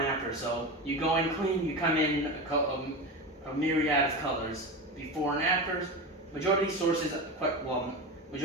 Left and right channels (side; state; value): both; normal; correlation 0.23